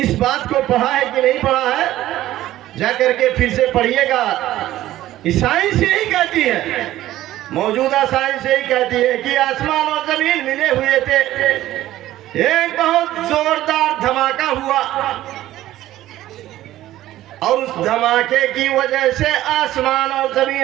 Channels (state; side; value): quieter; left; 14.5 dB